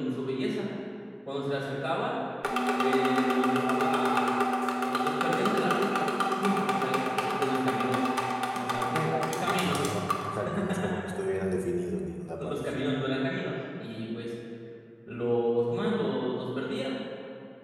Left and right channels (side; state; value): both; identical; correlation 1.00